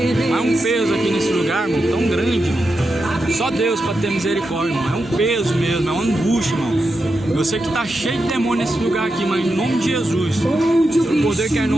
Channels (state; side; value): normal; both; correlation 0.88